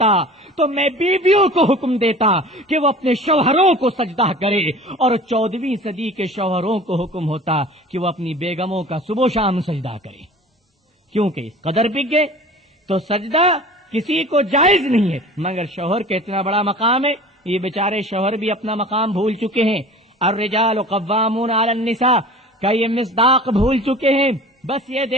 تو میں بیویوں کو حکم دیتا کہ وہ اپنے شوہروں کو سجدہ کرے، اور 14ویں صدی کے شوہروں کو حکم ہوتا کہ وہ اپنی بیگموں کا صبح و شام سجدہ کرے، کیونکہ اس قدر بک گئے۔ تو سجدہ کسی کو جائز نہیں ہے، مگر شوہر کا اتنا بڑا مقام ہے، یہ بیچارے شوہر بھی اپنا مقام بھول چکے ہیں۔ الرجال قوامون علی النساء کا یہ مصداق بھول چکے ہیں، بس یہ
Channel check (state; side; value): normal; both; correlation 0.41